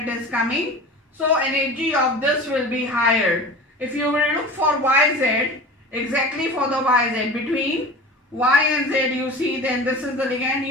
it is coming. So energy of this will be higher. If you will look for YZ, exactly for the YZ, between Y and Z you see, then this is the ligand.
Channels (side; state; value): both; normal; correlation 0.36